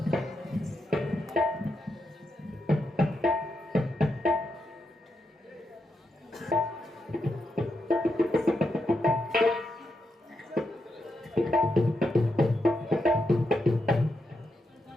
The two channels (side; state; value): both; normal; correlation 0.84